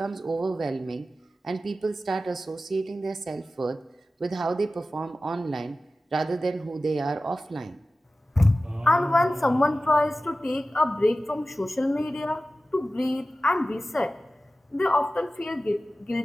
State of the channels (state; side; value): normal; both; correlation 0.95